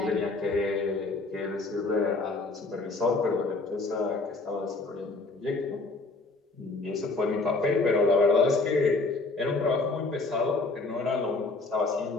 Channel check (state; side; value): quieter; right; 3.5 dB